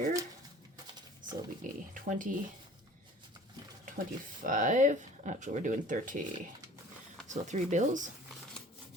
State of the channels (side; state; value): both; normal; correlation 0.47